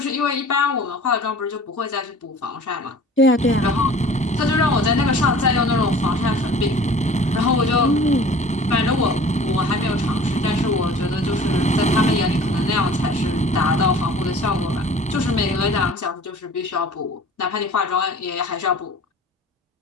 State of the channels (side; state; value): both; normal; correlation 0.46